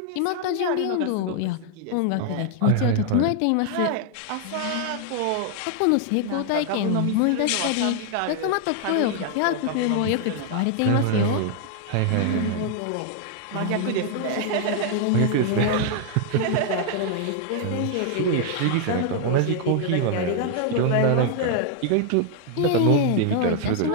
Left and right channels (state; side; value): different; both; correlation 0.00